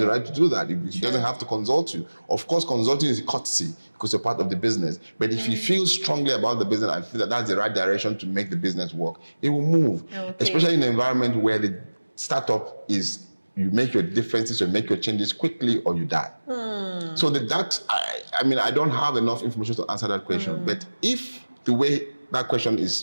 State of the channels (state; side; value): inverted; both; correlation -1.00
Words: the right to do that. He doesn't have to consult you. Of course, consulting is a courtesy because you're part of the business. But if you feel strongly about the business and feel that that's the right direction to make the business work, it will move. Especially in an environment where the startup is, you make your differences, you make your changes quickly or you die. So I don't have enough information to answer that question. But if the way that question